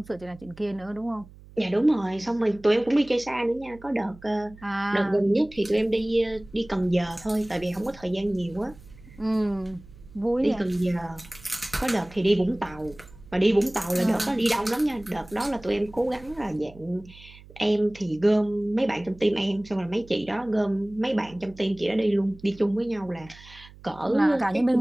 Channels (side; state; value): right; noise; hum, 21 dB below the sound